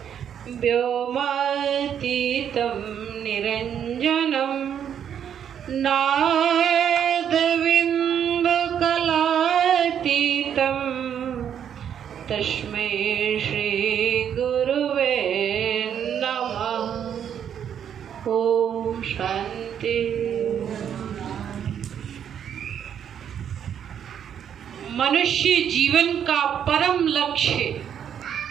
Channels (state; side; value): quieter; left; 8.8 dB